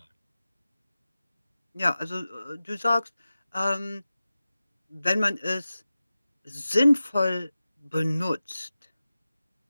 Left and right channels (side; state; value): both; inverted; correlation -0.95